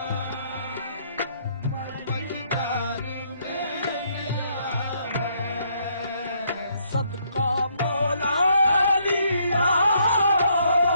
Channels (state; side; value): inverted; both; correlation -0.70